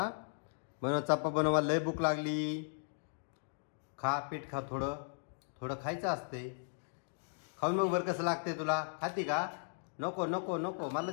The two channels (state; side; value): silent; right; digital silence